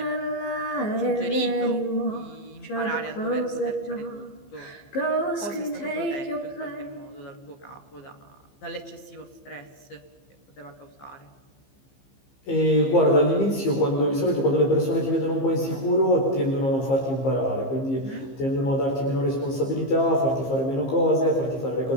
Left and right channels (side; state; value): right; late; 15 ms